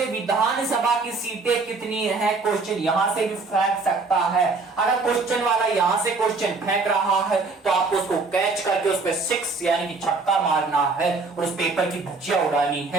विधानसभा की सीटें कितनी है, क्वेश्चन यहां से भी फेंक सकता है। अगर क्वेश्चन वाला यहां से क्वेश्चन फेंक रहा है तो आपको उसको कैच करके उस पर 6 यानी कि छक्का मारना है और उस पेपर की धज्जियां उड़ानी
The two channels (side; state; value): left; quieter; 3.9 dB